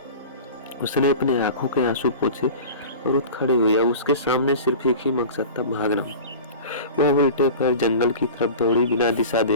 उसने अपने आंखों के आंसू पोंछे और उठ खड़ी हुई। अब उसके सामने सिर्फ एक ही मकसद था, भागना। वह उल्टे पैर जंगल की तरफ दौड़ी, बिना दिशा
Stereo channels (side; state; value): both; inverted; correlation -0.36